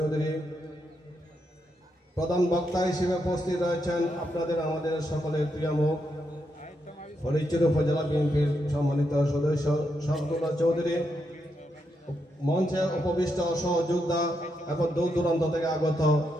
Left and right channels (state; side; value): normal; both; correlation 0.82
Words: প্রধান বক্তা হিসেবে উপস্থিত রয়েছেন আপনাদের আমাদের সকলের প্রিয় মুখ ফরিদপুর উপজেলা বিএনপির সম্মানিত সদস্য শরফুল্লাহ চৌধুরী। মঞ্চে উপবিষ্ট সহযোদ্ধা এবং দূর দূরান্ত থেকে আগত